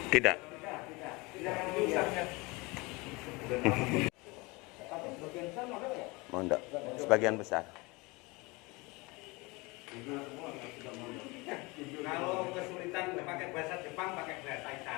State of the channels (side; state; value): right; quieter; 25.3 dB